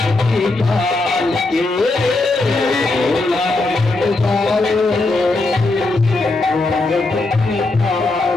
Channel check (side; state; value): right; quieter; 3.1 dB